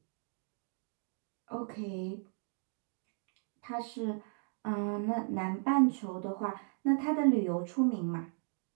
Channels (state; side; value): silent; left; 54 dB below the other